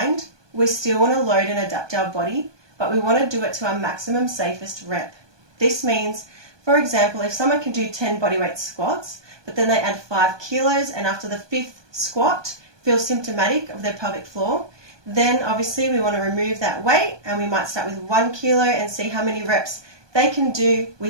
we still want to load and adapt our body, but we want to do it to our maximum safest rep. This means, for example, if someone can do 10 bodyweight squats, but then they add 5 kilos and after the 5th squat feel symptomatic of their pelvic floor, then obviously we want to remove that weight and we might start with 1 kilo and see how many reps they can do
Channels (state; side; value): late; left; 1.2 ms